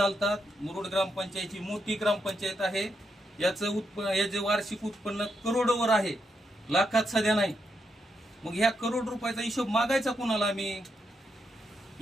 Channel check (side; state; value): both; normal; correlation 0.82